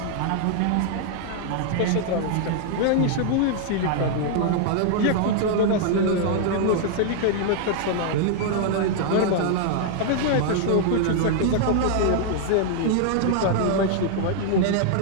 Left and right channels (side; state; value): both; different; correlation -0.01